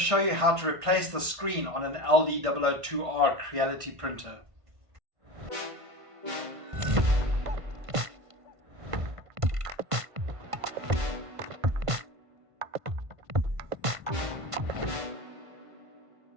you how to replace the screen on an LD002R Creality printer.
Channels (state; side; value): late; left; 1.5 ms